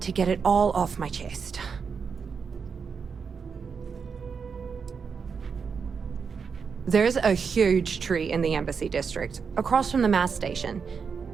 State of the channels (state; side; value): quieter; left; 5.9 dB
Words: to get it all off my chest. There's a huge tree in the Embassy District, across from the mass station.